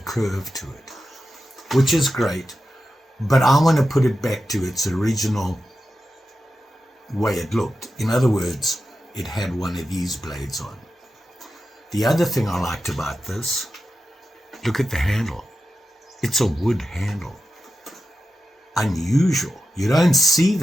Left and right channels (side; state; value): both; normal; correlation 0.90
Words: to it, which is great, but I want to put it back to its original way it looked. In other words, it had one of these blades on. The other thing I liked about this, look at the handle. It's a wood handle. Unusual. You don't see